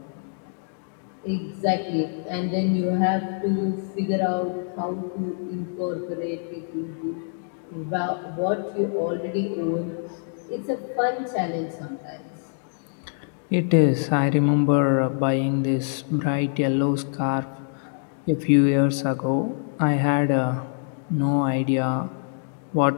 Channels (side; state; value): right; silent; 61 dB below the other